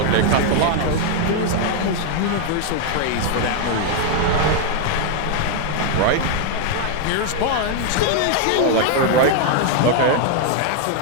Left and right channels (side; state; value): both; different; correlation 0.00